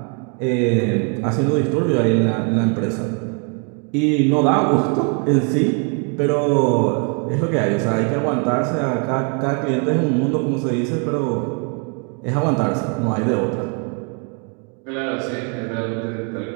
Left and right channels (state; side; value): quieter; left; 38.4 dB